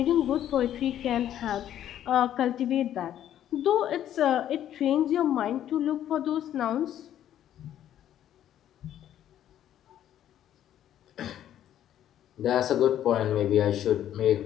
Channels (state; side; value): quieter; right; 11.2 dB